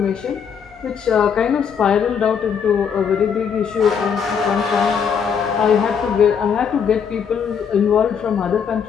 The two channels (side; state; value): right; quieter; 7.0 dB